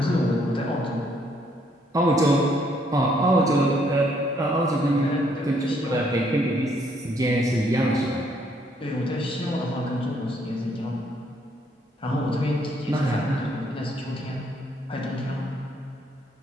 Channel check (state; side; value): normal; both; correlation 0.69